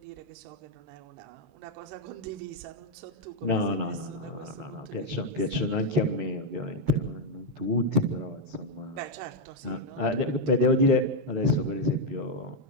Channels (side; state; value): left; late; 13 ms